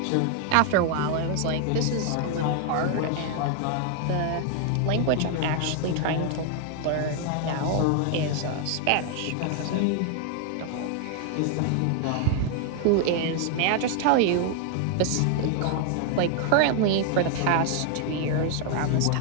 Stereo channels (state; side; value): different; both; correlation 0.00